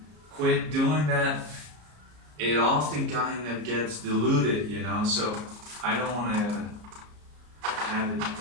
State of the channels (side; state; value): left; late; 33 ms